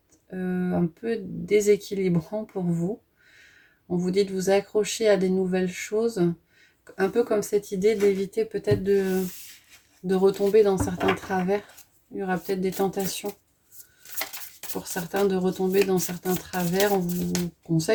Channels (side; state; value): both; identical; correlation 1.00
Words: un peu déséquilibrant pour vous. On vous dit de vous accrocher à des nouvelles choses, un peu comme cette idée d'éviter peut-être de retomber dans certains travers. Il y aura peut-être des tentations pour certains de retomber dans certains travers. On vous